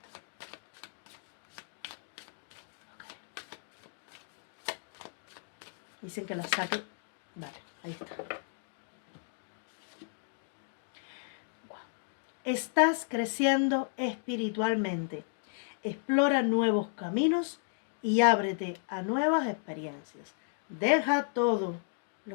Dicen que la saque. Vale, ahí está. Wow. Estás creciendo espiritualmente. Explora nuevos caminos y ábrete a nuevas experiencias. Deja todo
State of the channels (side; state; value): right; silent; digital silence